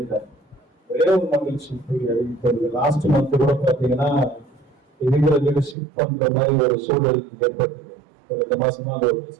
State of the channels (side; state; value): left; drops out; at 5.8 s